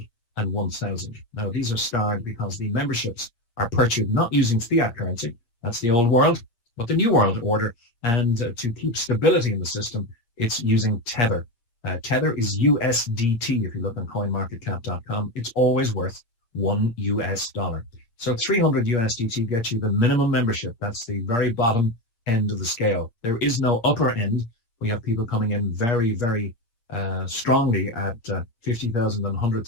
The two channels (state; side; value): late; right; 8.5 ms